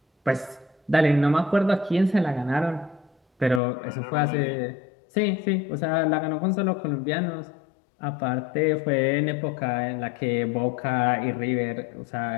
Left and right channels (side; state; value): right; drops out; at 3.6 s